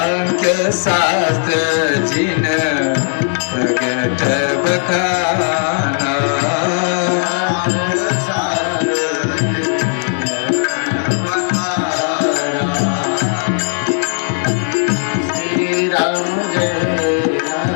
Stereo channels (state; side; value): silent; right; digital silence